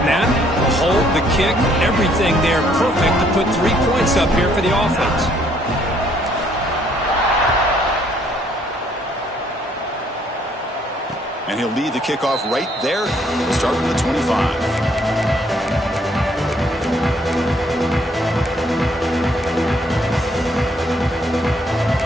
the hold, the kick, everything there perfect to put 3 points up here for the offense. And he'll lead the kickoff right there. We'll start from the 25.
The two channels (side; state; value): both; normal; correlation 0.66